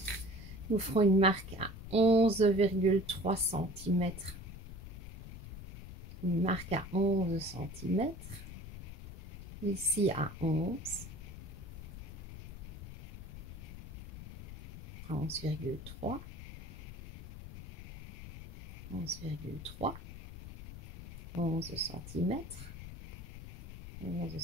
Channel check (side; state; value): left; noise; rumble, 10 dB below the sound